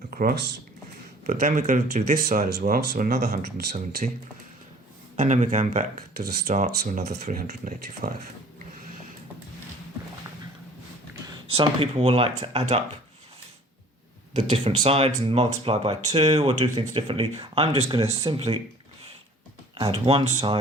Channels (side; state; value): both; normal; correlation 0.50